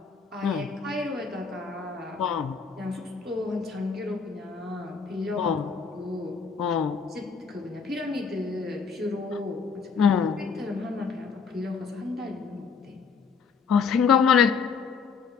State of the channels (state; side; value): quieter; right; 5.6 dB